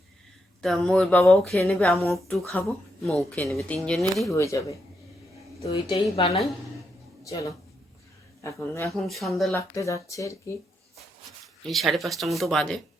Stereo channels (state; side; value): normal; both; correlation 0.80